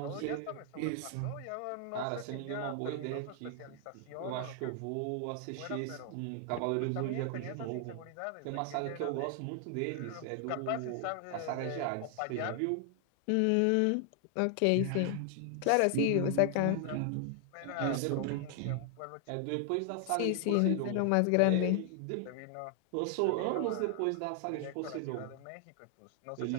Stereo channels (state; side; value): different; both; correlation 0.00